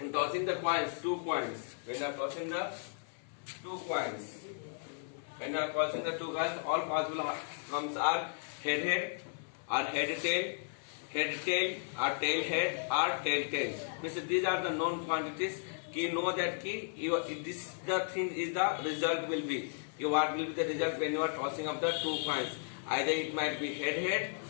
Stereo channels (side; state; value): right; silent; 55 dB below the other